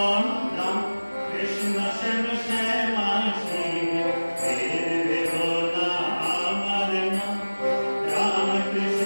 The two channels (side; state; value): both; inverted; correlation -1.00